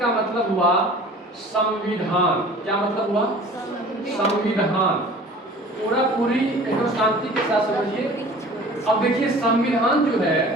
मतलब हुआ संविधान। क्या मतलब हुआ? संविधान। पूरी एकदम शांति के साथ समझिए। अब देखिए संविधान जो है,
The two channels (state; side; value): normal; both; correlation 0.45